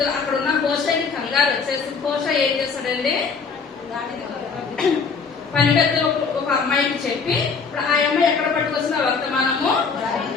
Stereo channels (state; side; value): quieter; right; 5.2 dB